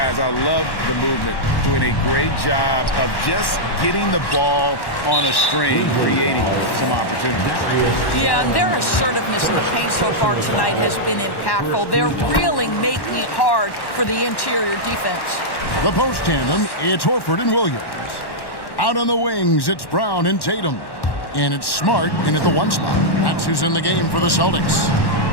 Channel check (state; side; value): late; right; 1.1 ms